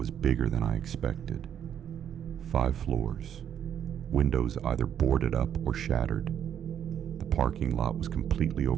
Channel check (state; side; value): quieter; left; 9.3 dB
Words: bigger than I expected. 5 floors, windows either boarded up or shattered. The parking lot was completely